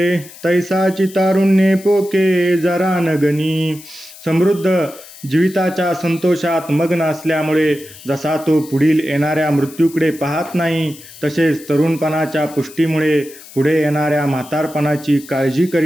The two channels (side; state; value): left; noise; hiss, 19 dB below the sound